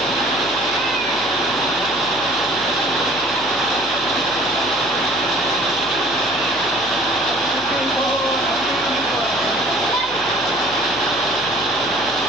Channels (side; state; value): left; noise; hum, 20 dB below the sound